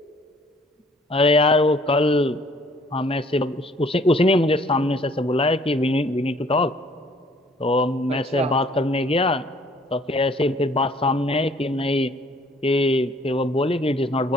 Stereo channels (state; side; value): normal; both; correlation 0.58